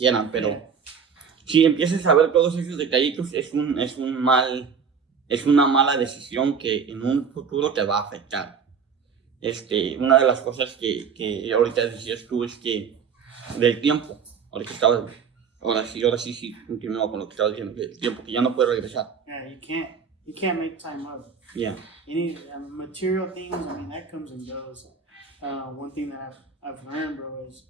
pero si empiezas a ver todos esos detallitos, es una mala decisión que en un futuro te va a afectar. Una de las cosas que ahorita decías tú es que del tiempo, ahora sí continúo con lo que estaba diciendo, del tiempo que ya no puedo regresar. Yeah, you can't make time up. Yeah. Any material things, that comes and goes. One thing that I've learned, bro,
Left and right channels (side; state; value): left; quieter; 6.3 dB